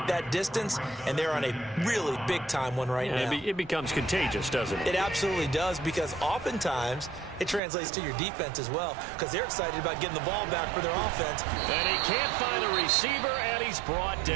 that distance, and they're on a really big-time one right now. It becomes contagious, doesn't it? It absolutely does, because oftentimes it translates to your defense as well, because they're excited about getting the ball back for their offense. And he can't find a receiver, and he's brought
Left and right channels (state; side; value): drops out; left; at 7.6 s